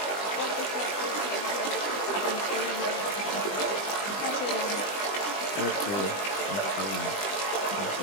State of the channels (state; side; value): late; right; 20 ms